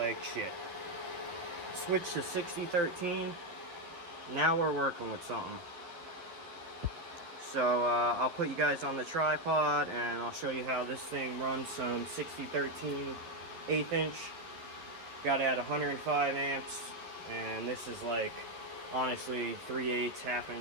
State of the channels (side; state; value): left; late; 12 ms